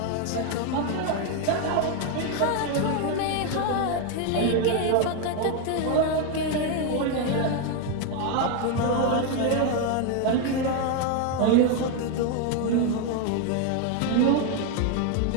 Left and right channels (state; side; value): different; both; correlation 0.01